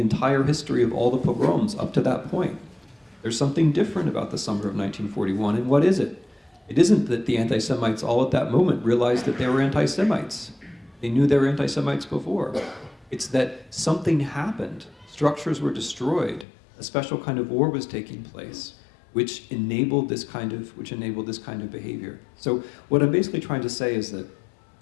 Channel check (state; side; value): drops out; right; at 16.4 s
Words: history of all the pogroms up to that point. There's something different about the summer of 1941, and what is it? It isn't that the anti-Semites all at that moment realized that they were anti-Semites. They knew they were anti-Semites before. It's that something happened. Structures were destroyed. A special kind of war was taking place, which enabled this kind of behavior. So what I'm basically trying to say is that